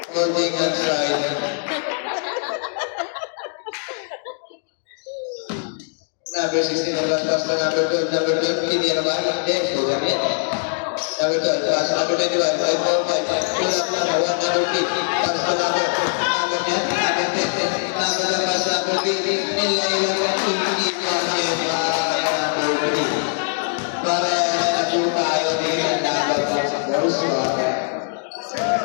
Holding outside. Number 16, pass sa number 12, hindi na ba? Hindi, sugar yan. Number 12, pass number 21, 5-4-5, pull up number 1, number 3, pass to number niya, number 10, number lang pass number 3, nilaiwan ng hindi kasi number 3. Para na po tayo din ang number pa sa course.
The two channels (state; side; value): silent; right; 64 dB below the other